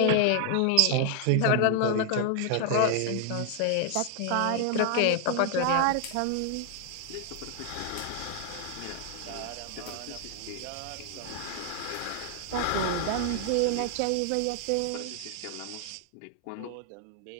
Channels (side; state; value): both; different; correlation 0.00